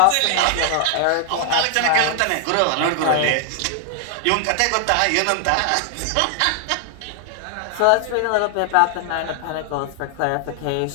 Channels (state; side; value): different; both; correlation 0.00